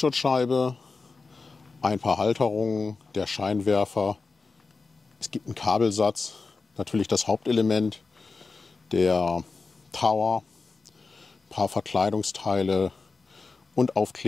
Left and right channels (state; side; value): quieter; right; 4.2 dB